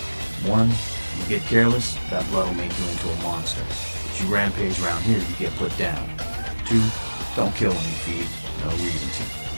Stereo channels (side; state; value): both; inverted; correlation -1.00